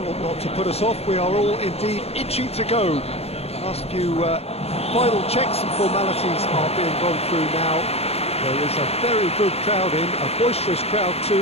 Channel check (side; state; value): right; late; 0.30 ms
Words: ought not to put us off. We are all indeed itching to go. Last few final checks and formalities are being gone through now. There is a very good crowd in, a boisterous crowd too,